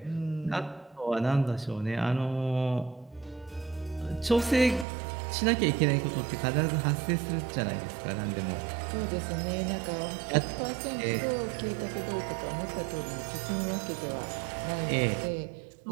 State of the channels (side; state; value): left; drops out; at 4.9 s